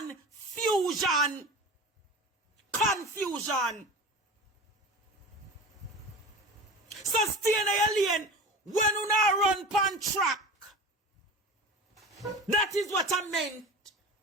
Confusion. So stay in your lane when you not run pan track. That is what I meant.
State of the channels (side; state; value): both; normal; correlation 0.33